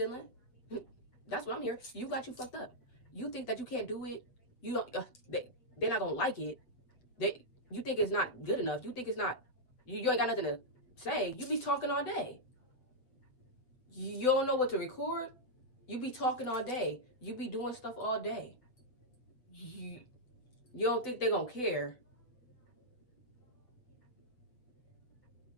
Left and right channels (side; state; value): right; late; 7.7 ms